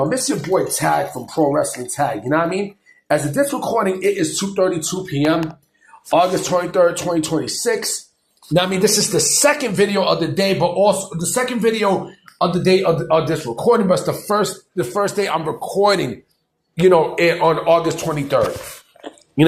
It's your boy Tag from Pro Wrestling Tag. You know what I mean? As of this recording, it is 2:32 p.m., August 23rd, 2026. Now, I mean, this is the second video of the day, but also the second video of the day of this recording, but it's the first day I'm recording, on August 23rd. You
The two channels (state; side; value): identical; both; correlation 1.00